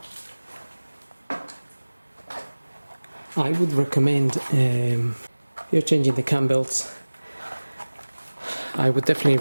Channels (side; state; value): both; inverted; correlation -1.00